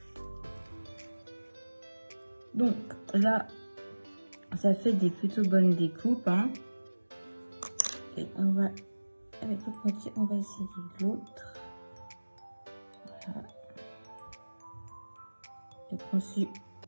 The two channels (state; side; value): inverted; both; correlation -1.00